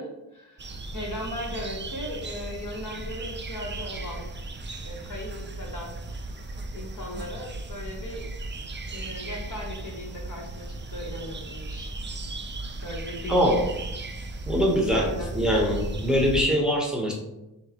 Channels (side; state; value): both; normal; correlation 0.43